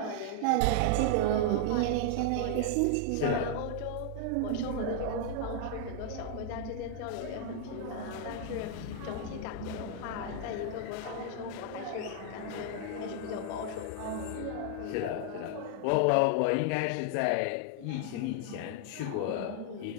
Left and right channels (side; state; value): both; different; correlation 0.00